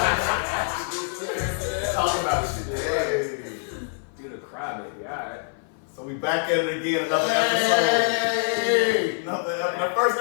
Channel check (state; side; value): silent; right; 56 dB below the other